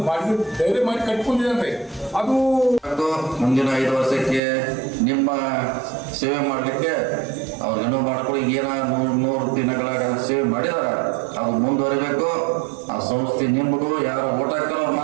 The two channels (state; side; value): drops out; left; at 4.4 s